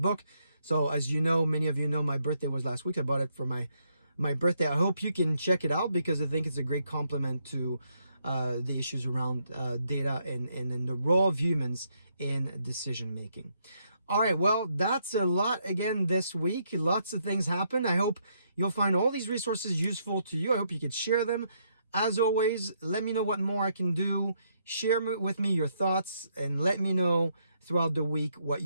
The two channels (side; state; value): both; inverted; correlation -0.75